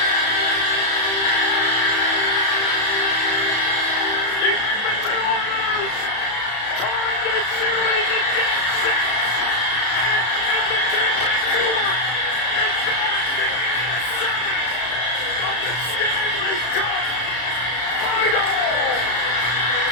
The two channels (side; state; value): right; late; 33 ms